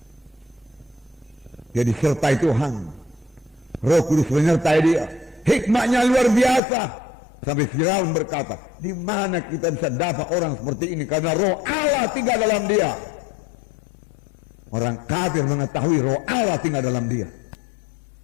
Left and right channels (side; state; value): right; drops out; at 6.6 s